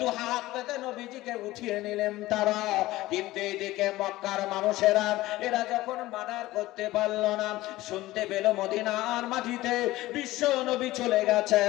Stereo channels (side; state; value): right; quieter; 17.5 dB